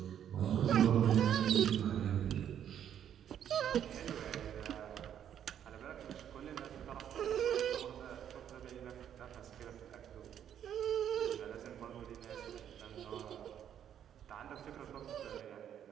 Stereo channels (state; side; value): quieter; left; 9.6 dB